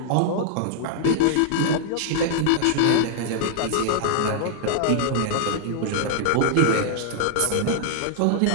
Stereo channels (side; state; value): both; different; correlation -0.01